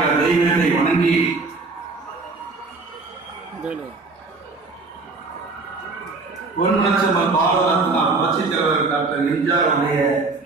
தெய்வத்தை வணங்கி பொன்மனச்செம்மல் பாரத ரத்னா புரட்சி தலைவர் டாக்டர் எம்ஜிஆர் அவருடைய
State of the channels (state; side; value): quieter; left; 3.8 dB